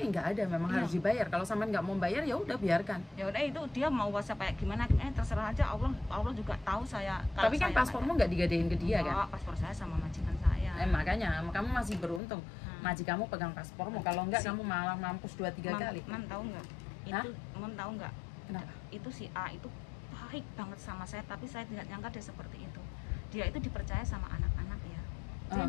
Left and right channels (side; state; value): right; drops out; at 12.2 s